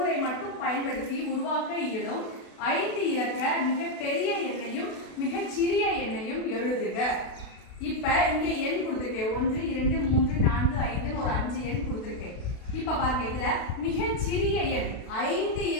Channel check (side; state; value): right; late; 32 ms